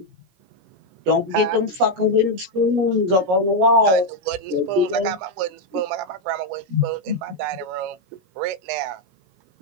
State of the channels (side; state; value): left; late; 16 ms